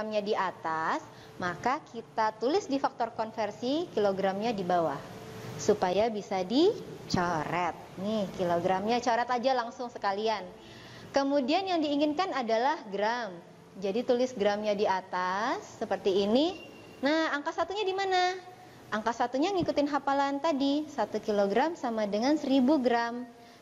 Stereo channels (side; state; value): both; identical; correlation 1.00